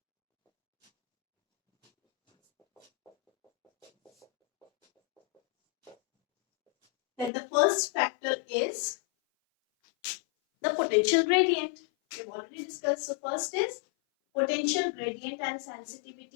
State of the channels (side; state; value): right; drops out; at 7.3 s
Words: that the first factor is the potential gradient. We have already discussed. So first is potential gradient and